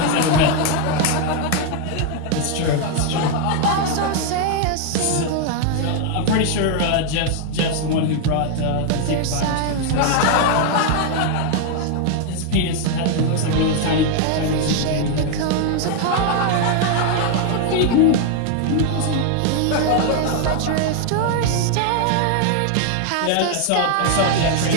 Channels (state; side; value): different; both; correlation 0.00